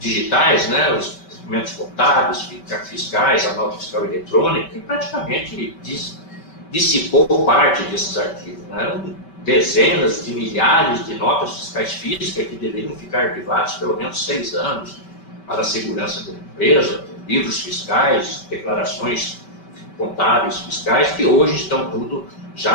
né, os documentos contábeis, fiscais, a nota fiscal eletrônica, que praticamente dissipou parte desses arquivos. Né? Eram dezenas de milhares de notas fiscais físicas que deveriam ficar arquivadas pelo menos 6 anos para a segurança da empresa, livros fiscais, declarações contábeis fiscais, que hoje estão tudo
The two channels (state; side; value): late; right; 5.2 ms